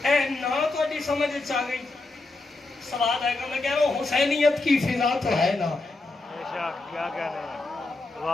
اے نا تھوڑی سمجھ آ گئی. سوال آئے گا, میں کہہ رہا ہوں حسینیت کی فضا تو ہے نا. کیا کہنے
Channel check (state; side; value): quieter; right; 3.2 dB